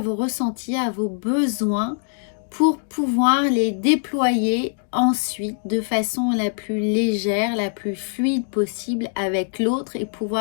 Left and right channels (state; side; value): silent; right; digital silence